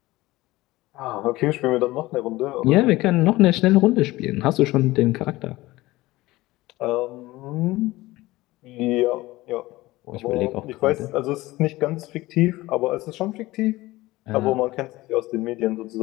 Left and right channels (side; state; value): right; quieter; 18.9 dB